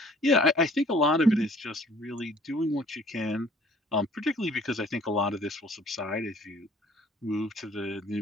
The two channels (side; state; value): both; normal; correlation 0.55